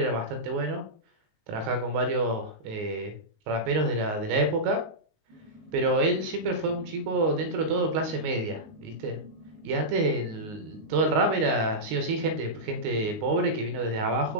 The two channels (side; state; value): left; late; 19 ms